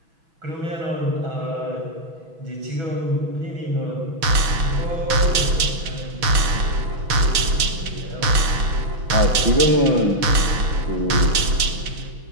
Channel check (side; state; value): left; late; 6.1 ms